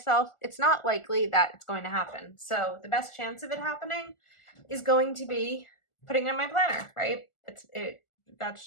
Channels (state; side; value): late; right; 1.4 ms